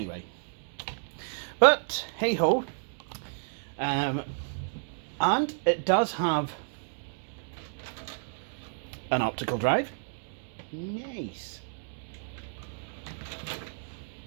But, hey-ho. And it does have an optical drive. Nice.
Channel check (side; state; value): left; silent; digital silence